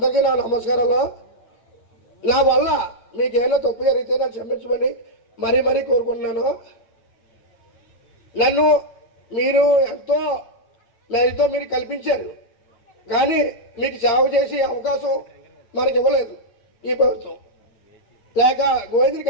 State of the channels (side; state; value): right; late; 9.0 ms